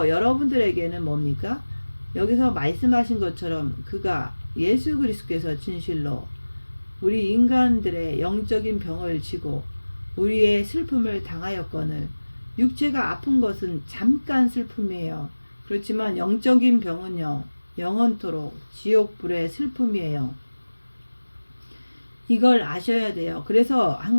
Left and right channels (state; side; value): inverted; both; correlation -1.00